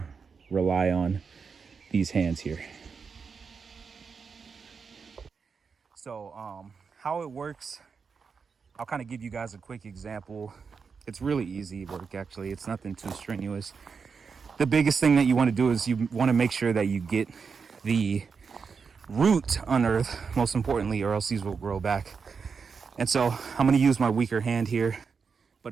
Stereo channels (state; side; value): quieter; left; 5.6 dB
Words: rely on these hands here. So how it works, I'll kind of give you guys a quick example. It's really easy work, actually. It's nothing too strenuous. The biggest thing that you want to do is you want to make sure that you get the root unearthed, most importantly, or else these will grow back. And so I'm going to use my weaker hand here. But